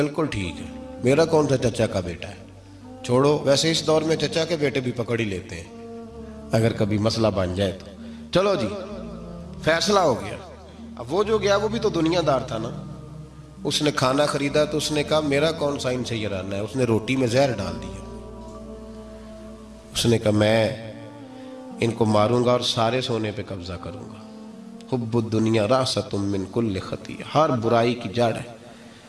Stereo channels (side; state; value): both; identical; correlation 1.00